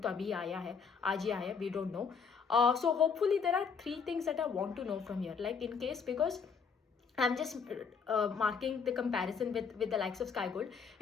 to abhi aaya hai, aaj hi aaya, we don't know. So hopefully there are 3 things that I want to know from here. Like in case, because I'm just marking the comparison with the likes of Sky Gold.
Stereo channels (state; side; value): quieter; right; 6.0 dB